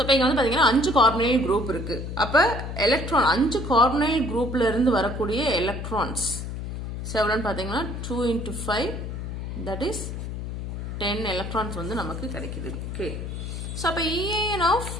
இப்போ இங்கே வந்து பார்த்தீங்கன்னா 5 கார்பனைல் குரூப் இருக்கு. அப்போ எலக்ட்ரான் 5 கார்பனைல் குரூப்ல இருந்து வரக்கூடிய எலக்ட்ரான்ஸ் எவ்வளோன்னு பார்த்தீங்கன்னா 2 × 5, தட் இஸ் 10 எலக்ட்ரான்ஸ் வந்து நமக்கு கிடைக்குது. ஓகே, ஸோ அப்போ EAN ஆஃப்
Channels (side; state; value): left; noise; hum, 6 dB below the sound